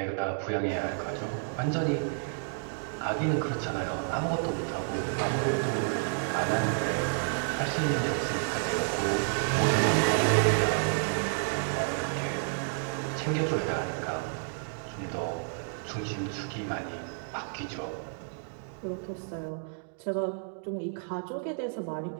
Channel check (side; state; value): left; silent; digital silence